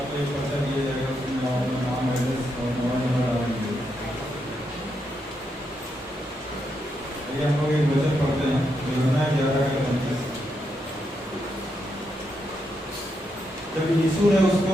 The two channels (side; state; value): both; normal; correlation 0.81